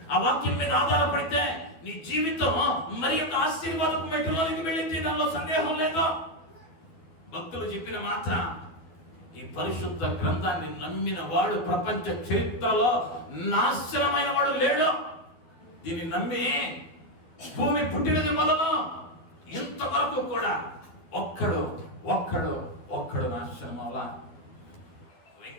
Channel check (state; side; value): late; right; 12 ms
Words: ఆ వాక్యం మీద ఆధారపడితే నీ జీవితం మరి యొక్క ఆశీర్వాదపు మెట్టులోనికి వెళ్ళింది, దానిలో సందేహం లేదు. భక్తులు చెప్పిన మాట, ఈ పరిశుద్ధ గ్రంథాన్ని నమ్మిన వాడు ప్రపంచ చరిత్రలో నాశనమైన వాడు లేడు. దీన్ని నమ్మి భూమి పుట్టినది మొదలు ఇంతవరకు కూడా ఒక్కడు నాశనం అవ్వాలా.